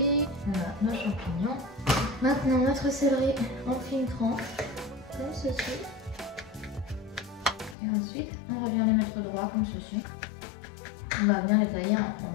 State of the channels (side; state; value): right; drops out; at 7.8 s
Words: Voilà nos champignons. Maintenant, notre céleri en fines tranches. Comme ceci. Et ensuite, on va bien les mettre droit comme ceci. On va bien les tailler